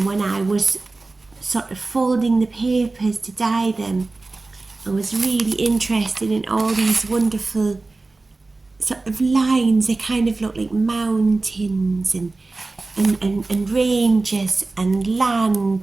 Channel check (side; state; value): left; quieter; 3.4 dB